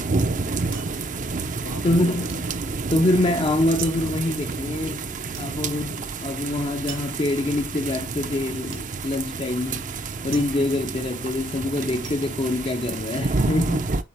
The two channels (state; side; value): normal; both; correlation 0.69